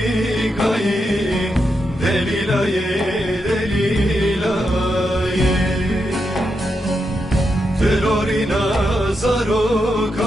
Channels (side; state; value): both; normal; correlation 0.84